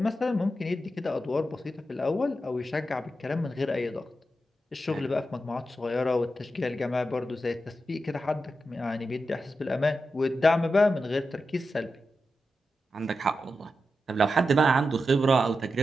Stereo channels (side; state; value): both; normal; correlation 0.89